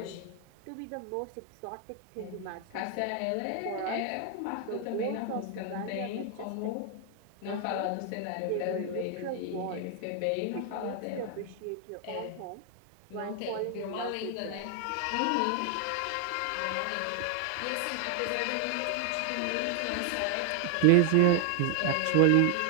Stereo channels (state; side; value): different; both; correlation 0.00